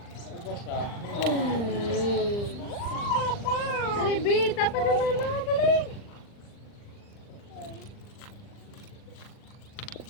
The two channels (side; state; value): right; late; 40 ms